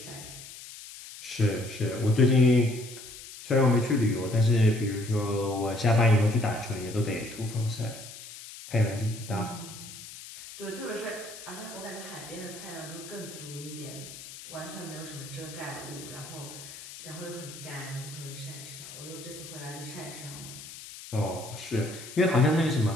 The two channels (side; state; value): left; noise; hiss, 14 dB below the sound